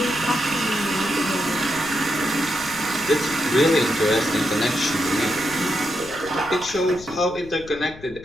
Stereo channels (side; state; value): left; noise; rumble, 18 dB below the sound